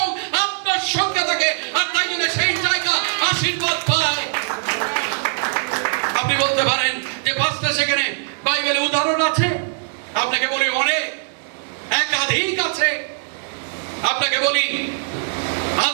আপনার সঙ্গে থাকে। আর তাই জন্য সেই জায়গা আশীর্বাদ পায়। আপনি বলতে পারেন যে পাঁচটা সেখানে বাইবেলে উদাহরণ আছে। আপনাকে বলি অনেক, একাধিক আছে। আপনাকে বলি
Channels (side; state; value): left; silent; digital silence